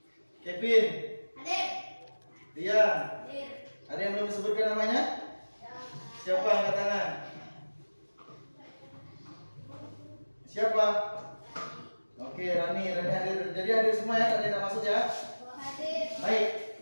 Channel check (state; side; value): inverted; both; correlation -1.00